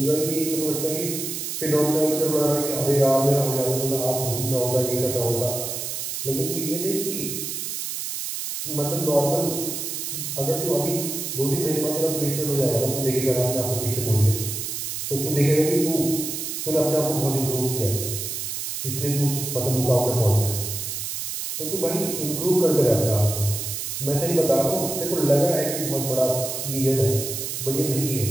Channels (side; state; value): right; noise; hiss, 4 dB below the sound